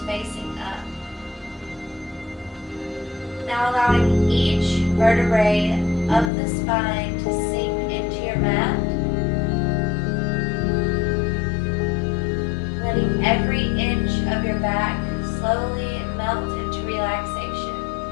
facing up. Now allowing each vertebrae of the spine to sink into your mat. Letting every inch of your back slowly melt into relaxation.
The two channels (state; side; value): drops out; right; at 6.3 s